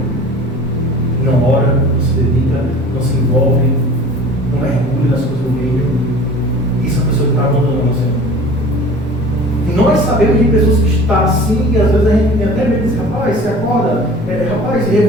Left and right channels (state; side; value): normal; both; correlation 0.43